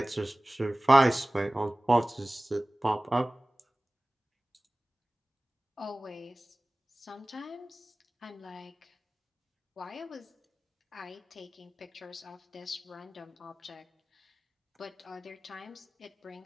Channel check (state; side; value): normal; both; correlation 0.98